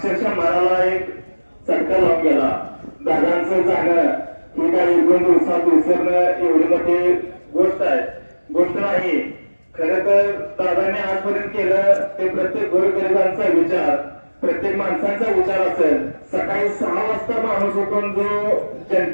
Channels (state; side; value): inverted; both; correlation -1.00